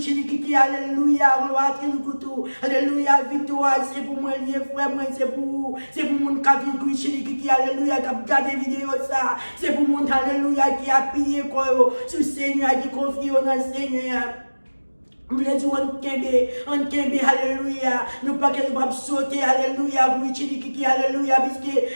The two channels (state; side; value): inverted; both; correlation -1.00